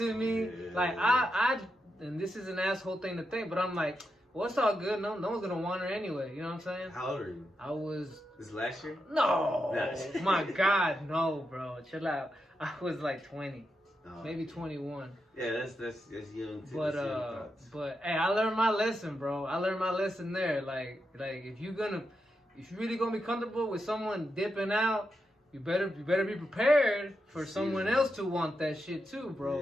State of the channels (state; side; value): normal; both; correlation 0.86